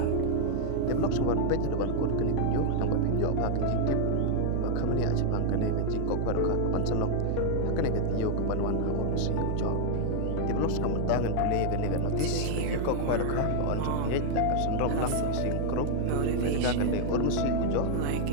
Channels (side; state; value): both; different; correlation 0.00